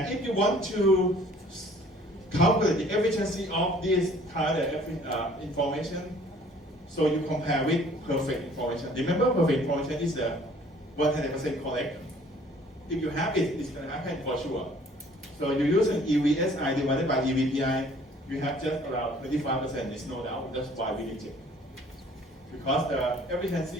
if you want to calculate the efficiency of this kind of information, so you compare with perfect information. Remember, perfect information is 100% correct. If you have it, it's going to happen for sure. So you use an EVSI divided by EVPI, you have just around 25%, there's no doubt. That's why we reject. Because the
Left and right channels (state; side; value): normal; both; correlation 0.55